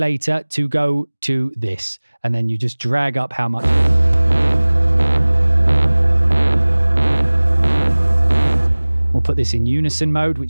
to go to this, and then you just drag up how much. We'll put this in unison mode,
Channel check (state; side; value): inverted; both; correlation -1.00